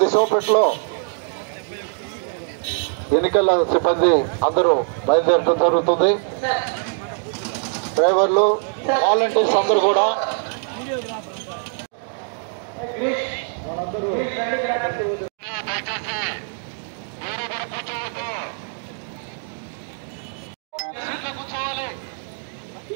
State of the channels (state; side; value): silent; left; 59 dB below the other